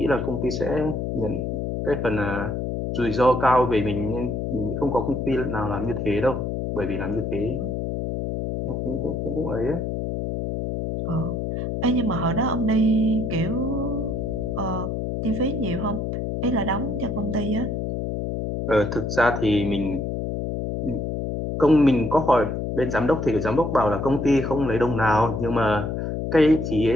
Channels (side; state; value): left; noise; hum, 2 dB below the sound